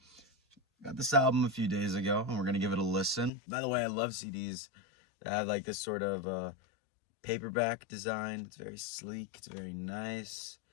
got this album a few days ago, and we're going to give it a listen. By the way, I love CDs that have like this sort of paperback design. It's very sleek. It's very nice.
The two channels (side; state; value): right; drops out; at 3.3 s